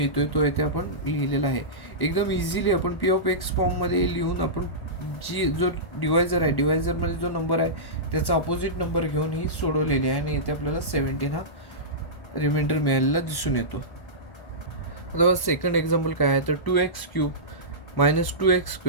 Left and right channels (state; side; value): late; right; 1.5 ms